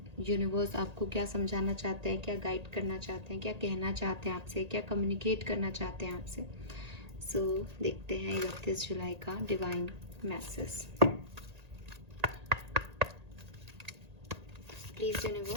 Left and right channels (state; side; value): late; left; 1.8 ms